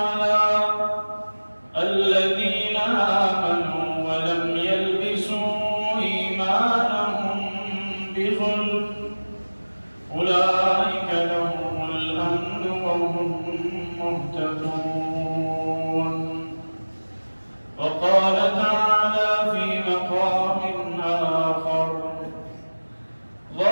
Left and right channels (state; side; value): inverted; both; correlation -1.00